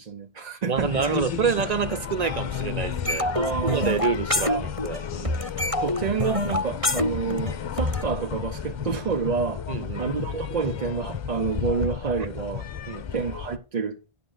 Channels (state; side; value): late; left; 1.6 ms